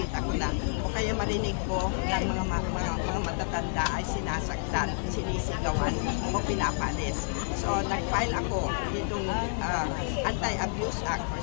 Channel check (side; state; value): right; silent; 58 dB below the other